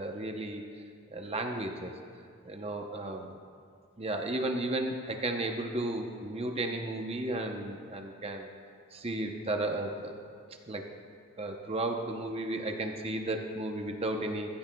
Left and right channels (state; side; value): normal; both; correlation 0.42